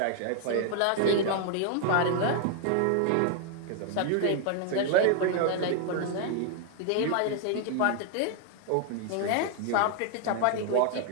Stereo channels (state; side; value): different; both; correlation 0.00